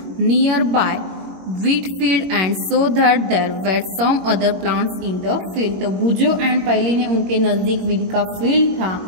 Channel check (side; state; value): left; late; 21 ms